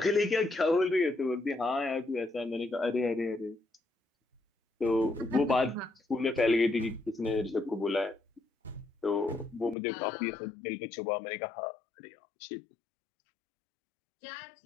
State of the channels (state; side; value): drops out; right; at 9.8 s